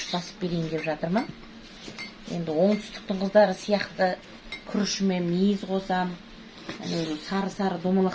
басып берейін деп жатырмын. Енді оңтүстіктің қыздары сияқты күрішіме мейіз қосам, сары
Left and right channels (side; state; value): both; identical; correlation 1.00